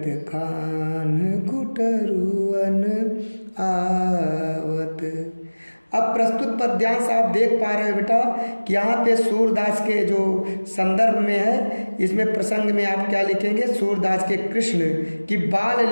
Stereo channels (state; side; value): inverted; both; correlation -1.00